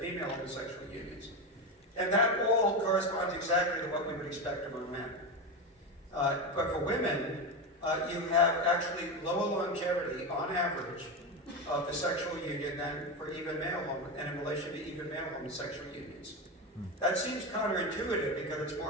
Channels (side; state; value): both; normal; correlation 0.16